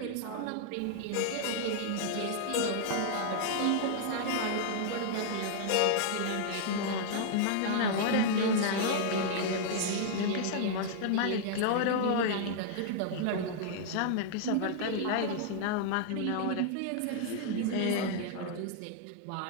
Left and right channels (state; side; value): different; both; correlation -0.01